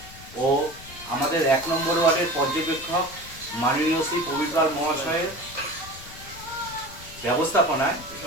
ও আমাদের 1 নম্বর ওয়ার্ডের পর্যবেক্ষক মাননীয় শ্রী প্রবীর পাল মহাশয়ের ব্যবস্থাপনায়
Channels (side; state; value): left; noise; rumble, 17 dB below the sound